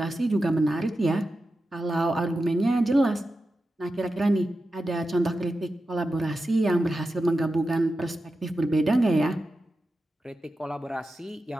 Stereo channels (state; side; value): normal; both; correlation 0.91